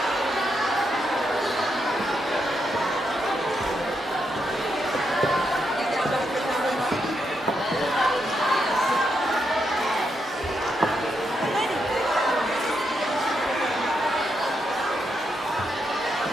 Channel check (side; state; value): both; normal; correlation 0.81